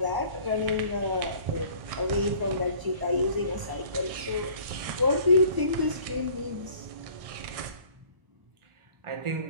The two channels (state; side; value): late; left; 1.0 ms